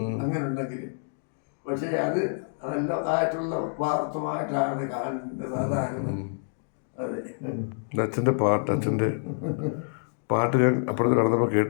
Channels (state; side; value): silent; right; digital silence